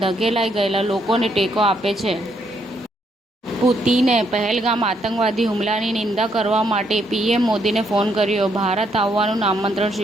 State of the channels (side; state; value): both; normal; correlation 0.73